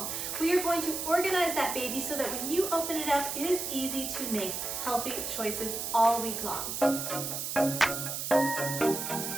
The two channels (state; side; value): noise; right; hiss, 4 dB below the sound